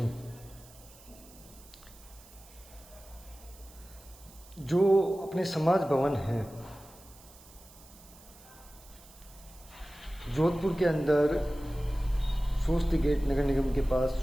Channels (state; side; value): noise; right; hiss, 22 dB below the sound